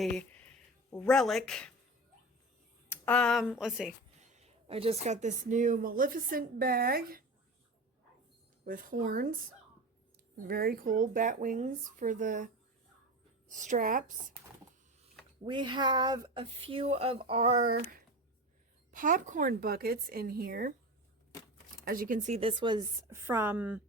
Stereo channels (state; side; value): normal; both; correlation 0.28